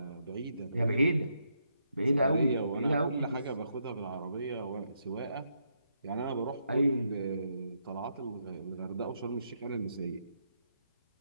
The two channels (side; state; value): both; inverted; correlation -0.78